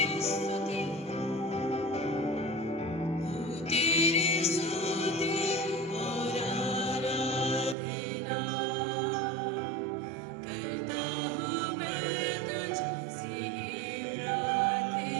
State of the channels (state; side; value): drops out; left; at 7.8 s